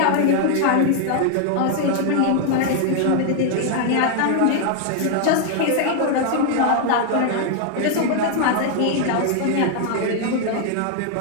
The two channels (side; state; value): both; different; correlation 0.00